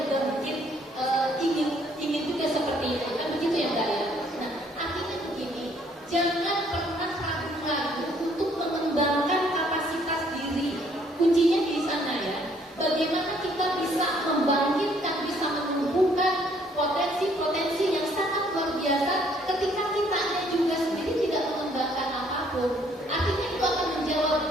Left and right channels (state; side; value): normal; both; correlation 0.64